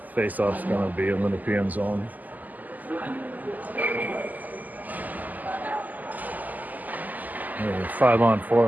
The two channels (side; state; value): left; late; 0.082 ms